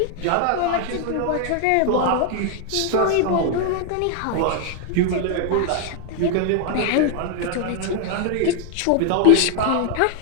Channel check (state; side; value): different; both; correlation 0.00